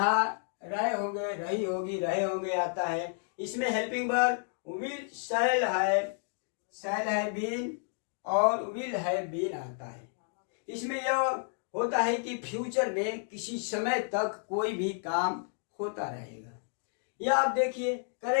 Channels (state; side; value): silent; right; 57 dB below the other